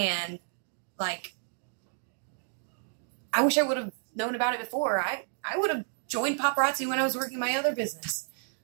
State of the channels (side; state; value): left; silent; digital silence